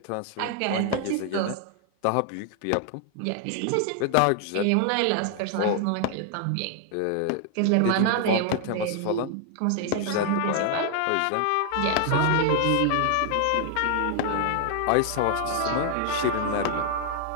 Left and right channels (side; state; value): both; different; correlation 0.00